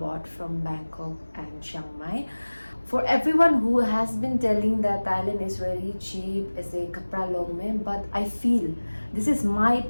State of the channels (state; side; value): inverted; both; correlation -1.00